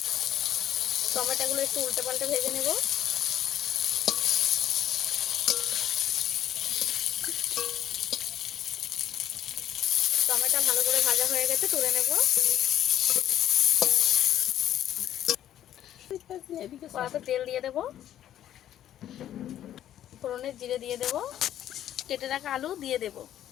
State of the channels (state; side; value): quieter; right; 11.5 dB